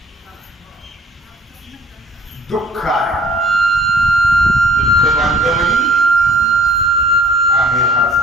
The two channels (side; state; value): both; normal; correlation 0.53